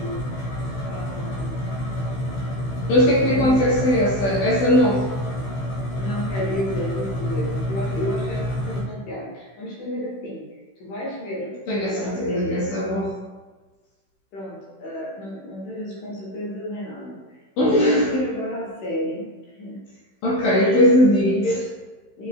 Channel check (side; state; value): right; late; 16 ms